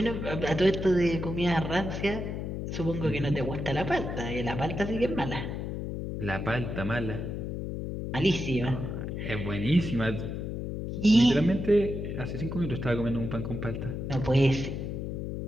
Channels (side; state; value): left; noise; hum, 4 dB below the sound